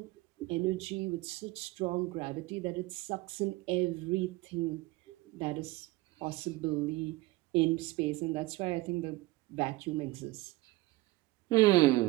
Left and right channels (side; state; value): left; quieter; 19.9 dB